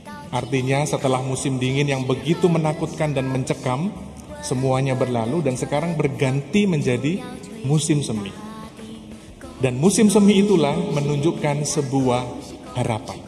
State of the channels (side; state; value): both; identical; correlation 1.00